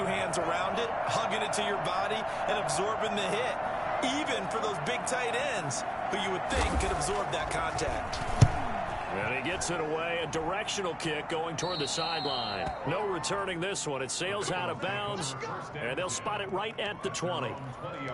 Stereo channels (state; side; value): identical; both; correlation 1.00